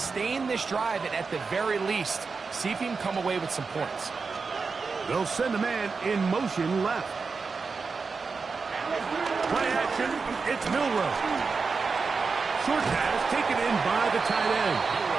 this drive and at the very least, see if you can come away with some points. They'll send a man in motion left. Play action, it's Milroe. Short pass taken in by the tight end.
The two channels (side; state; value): left; quieter; 4.8 dB